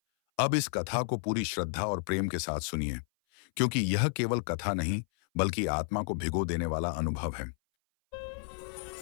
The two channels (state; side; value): silent; right; 56 dB below the other